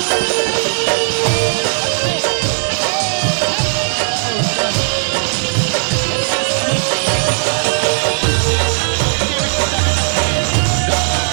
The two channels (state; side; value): silent; left; 64 dB below the other